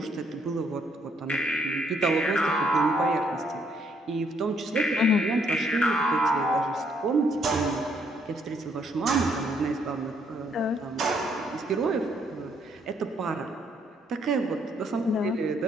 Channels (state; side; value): normal; both; correlation 0.70